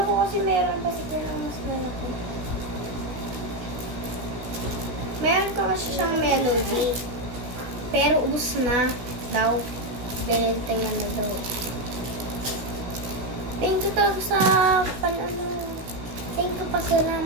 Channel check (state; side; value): late; left; 16 ms